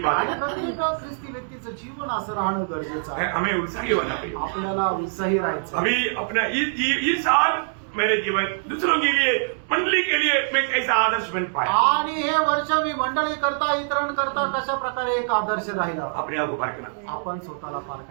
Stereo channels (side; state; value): left; silent; digital silence